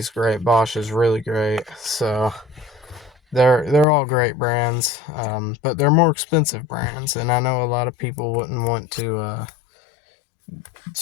great. Bosch is really great. So they're all great brands, but they're more expensive brands, and I know a lot of people wouldn't want to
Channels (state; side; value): drops out; right; at 3.9 s